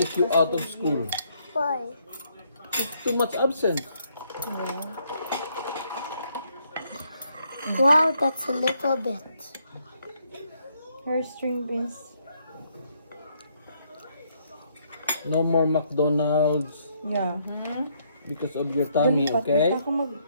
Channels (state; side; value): inverted; both; correlation -0.72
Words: you out of school. Why? It's too much absent. Wow, that's a little bit. Her string beans. No more McDonald's Yeah. because of your tummy, okay?